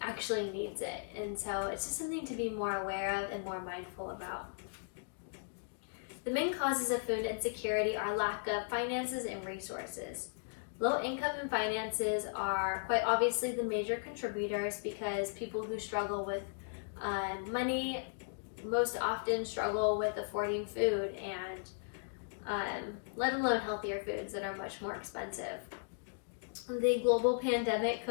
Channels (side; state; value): right; silent; digital silence